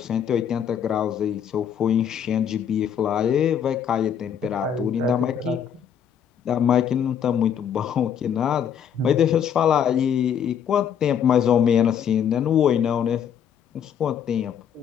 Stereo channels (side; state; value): right; quieter; 8.4 dB